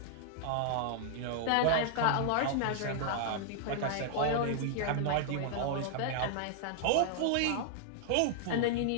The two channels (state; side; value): different; both; correlation -0.01